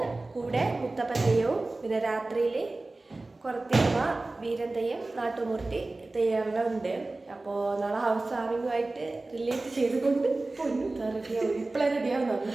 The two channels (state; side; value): quieter; left; 3.1 dB